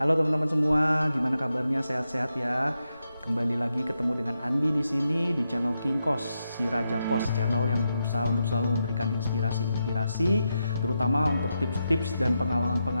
teman-teman semua, gimana kabarnya? Sehat-sehat ya? Kembali lagi ketemu dengan Andi di sini di channel King Kos, si Raja Kos, channel yang berusaha untuk selalu memberikan inspirasi-inspirasi, terutama untuk tips-tips dan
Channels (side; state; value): both; inverted; correlation -0.86